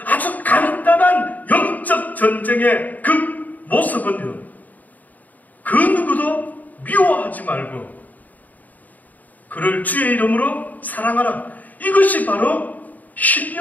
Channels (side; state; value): right; late; 0.079 ms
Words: 아주 간단한 영적 전쟁의 그 모습은요 그 누구도 미워하지 말고 그를 주의 이름으로 사랑하라. 이것이 바로